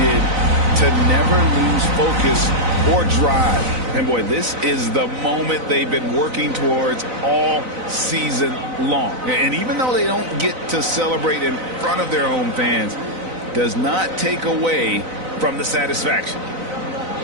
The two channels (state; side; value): late; left; 4.0 ms